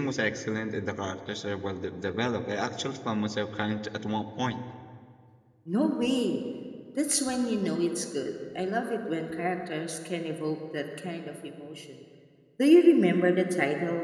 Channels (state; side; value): identical; both; correlation 1.00